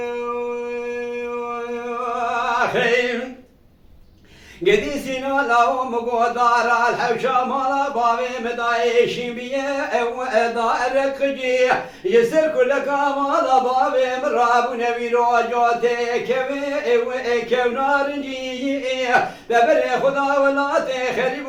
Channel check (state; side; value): identical; both; correlation 1.00